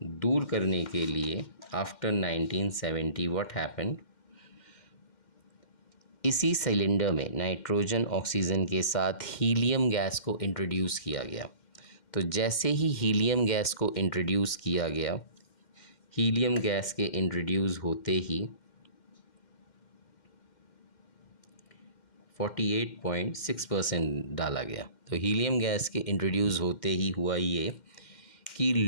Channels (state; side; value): late; right; 2.1 ms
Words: दूर करने के लिए आफ्टर 1970 व्हाट हैपेंड, इसी सिलेंडर में नाइट्रोजन ऑक्सीजन के साथ हीलियम गैस को इंट्रोड्यूस किया गया। तो जैसे ही हीलियम गैस को इंट्रोड्यूस किया गया, हीलियम गैस के इंट्रोड्यूस होते ही 48.6% डाला गया। तो हीलियम गैस के इंट्रोड्यूस होते ही हुआ ये कि